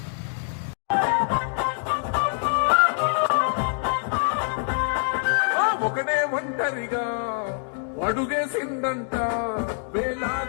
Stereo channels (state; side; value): silent; right; digital silence